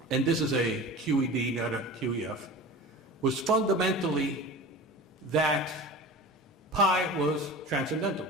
and this is a QED, not a QEF, was fundamentally that pi was transcendental,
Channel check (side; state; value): both; normal; correlation 0.35